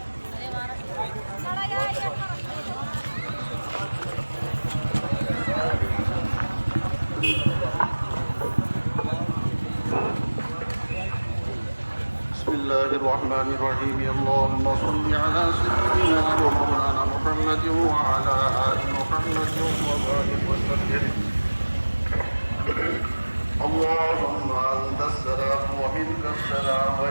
الله الرحمن الرحيم اللهم صل على سيدنا ومولانا محمد وعلى آل محمد وبارك وسلم اللهم أنت السلام ومنك السلام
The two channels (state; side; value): inverted; both; correlation -1.00